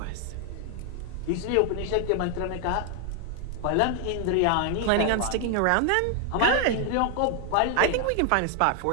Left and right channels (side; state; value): both; different; correlation 0.00